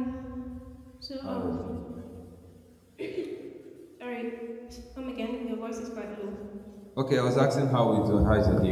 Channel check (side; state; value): both; identical; correlation 1.00